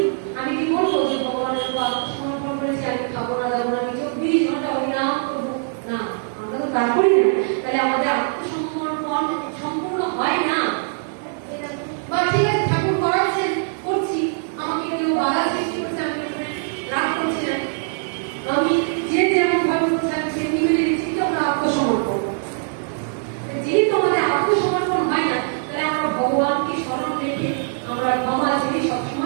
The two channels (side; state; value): left; silent; 64 dB below the other